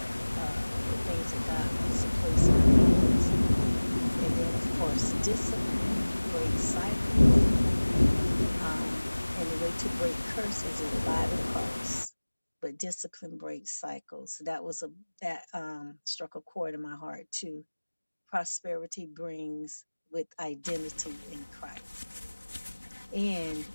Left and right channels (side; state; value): both; inverted; correlation -1.00